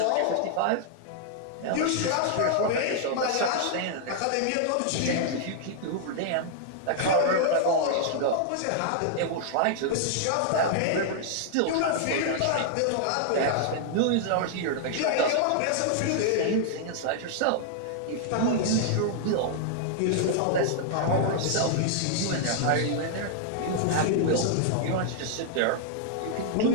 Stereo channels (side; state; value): both; different; correlation -0.01